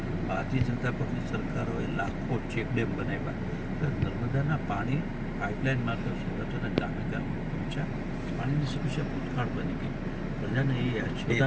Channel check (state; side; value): identical; both; correlation 1.00